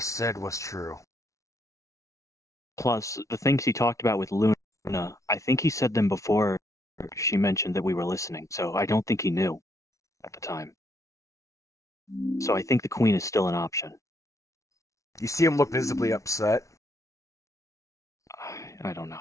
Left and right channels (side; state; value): right; late; 0.15 ms